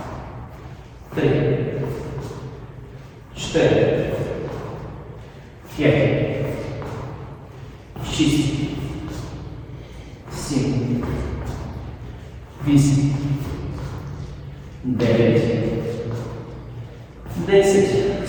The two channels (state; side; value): identical; both; correlation 1.00